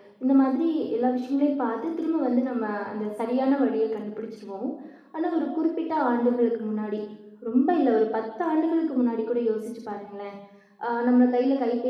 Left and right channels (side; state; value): both; identical; correlation 1.00